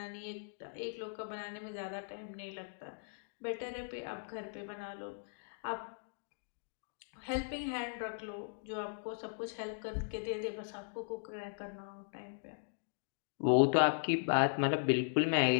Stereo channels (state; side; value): silent; right; digital silence